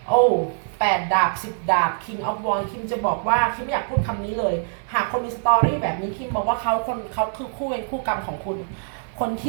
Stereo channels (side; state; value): left; silent; digital silence